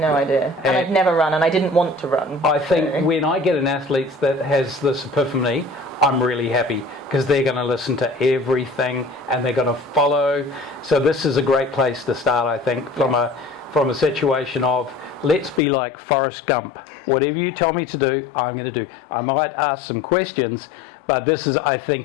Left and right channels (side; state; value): right; drops out; at 15.6 s